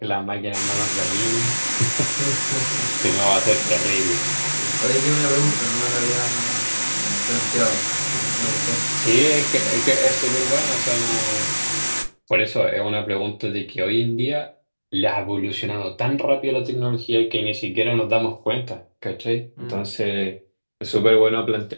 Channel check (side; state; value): both; inverted; correlation -1.00